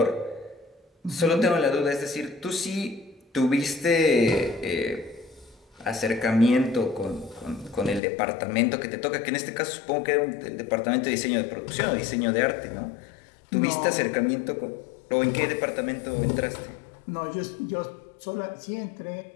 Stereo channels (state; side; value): drops out; right; at 8.0 s